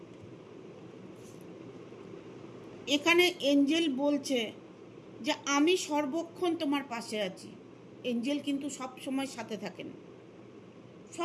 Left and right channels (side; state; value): both; identical; correlation 1.00